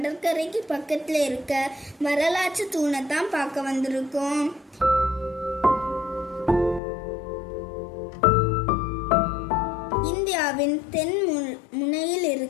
பக்கத்தில் இருக்க வரலாற்று தூணை தான் பார்க்க வந்திருக்கோம். இந்தியாவின் தென் முனையில்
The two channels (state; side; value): drops out; right; at 6.8 s